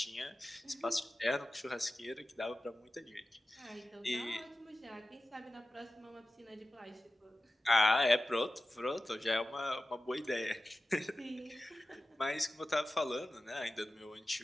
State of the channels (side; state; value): both; normal; correlation 0.94